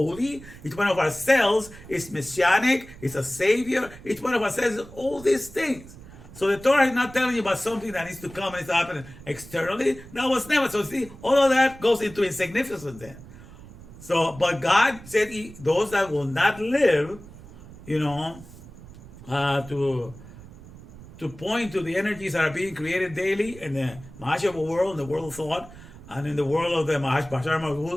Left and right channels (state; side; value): noise; right; rumble, 18 dB below the sound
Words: Each one of our cells is messianic. It's a savior. Each one of our cells is all these things. So the Torah is not telling you about something that needs to come and needs to happen externally. That was never. So see, all of that goes into insignificance then. So, but God said those that will not live, to point to the energies that are being created daily in the Mahashava world, in the world of thought, and in the world of the Bashar